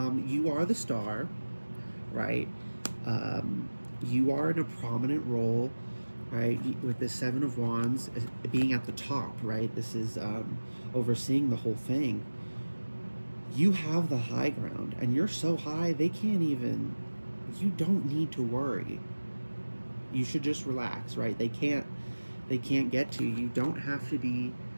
You are the Star, right? You are in a prominent role, right? With the Seven of Wands being at the top, right? This is overseeing the whole thing. You have the high ground, and you're so high they can't even, you don't need to worry. You should just relax, right? They can't get to you. You don't have to be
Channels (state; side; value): inverted; both; correlation -1.00